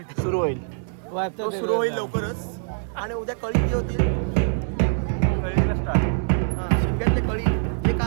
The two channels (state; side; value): silent; left; digital silence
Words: सुरू होईल तो सुरू होईल लवकरच आणि उद्या कळी जी होतील हा शिमग्यातले कळी जे